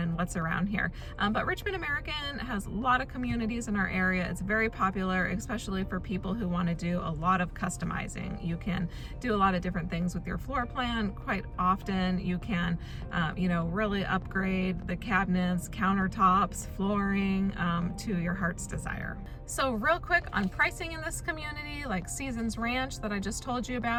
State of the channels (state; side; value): identical; both; correlation 1.00